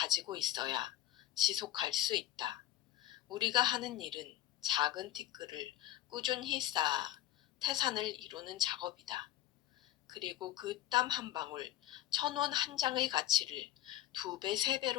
있어야 지속할 수 있다. 우리가 하는 일은 작은 티끌을 꾸준히 쌓아 태산을 이루는 작업이다. 그리고 그 땀 한 방울, 1,000원 한 장의 가치를 2배,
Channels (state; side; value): quieter; right; 13.7 dB